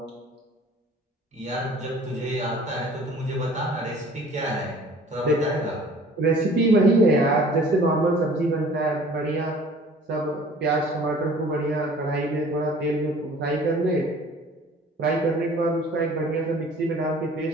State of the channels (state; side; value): normal; both; correlation 0.50